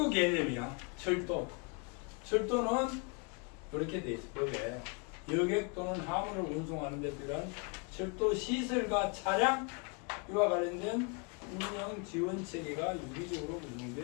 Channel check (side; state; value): right; quieter; 33.8 dB